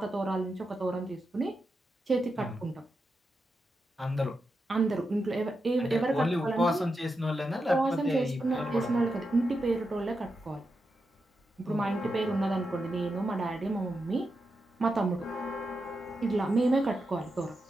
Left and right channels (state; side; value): normal; both; correlation 0.87